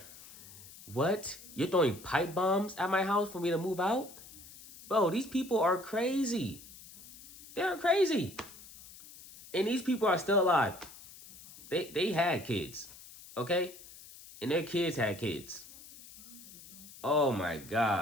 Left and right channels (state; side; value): noise; left; hiss, 18 dB below the sound